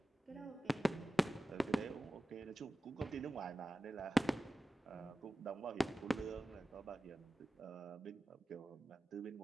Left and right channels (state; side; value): normal; both; correlation 0.95